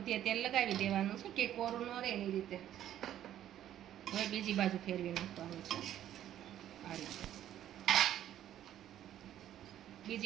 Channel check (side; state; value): left; quieter; 11.6 dB